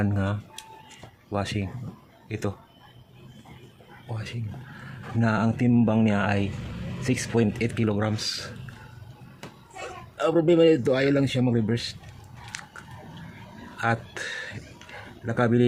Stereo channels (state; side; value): identical; both; correlation 1.00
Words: nga washing. Ito washing na ang timbang niya ay 6.8 kilograms. Ang problema nito, ayaw lang siya mag-reverse. At nakabili